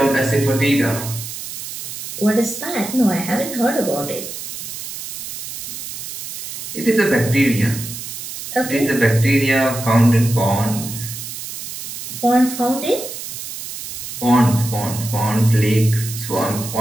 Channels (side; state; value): right; noise; hiss, 8 dB below the sound